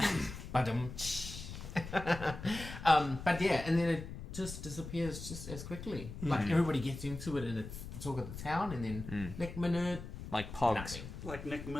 But yeah, and then it just disappears just as quickly. Like everybody gets into it and it's the talk of the town, and then next minute, Like pogs. nothing. Like Nick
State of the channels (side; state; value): left; noise; rumble, 10 dB below the sound